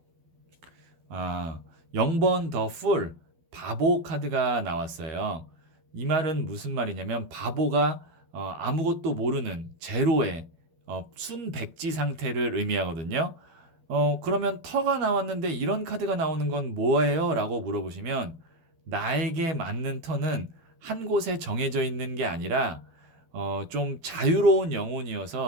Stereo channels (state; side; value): late; left; 12 ms